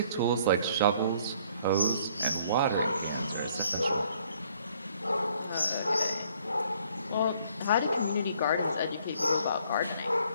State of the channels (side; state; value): both; inverted; correlation -0.62